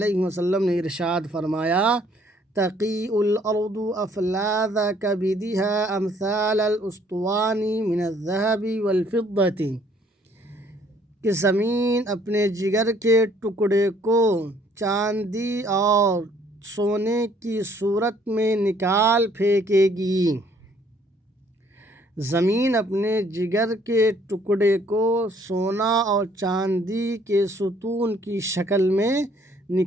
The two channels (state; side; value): normal; both; correlation 0.62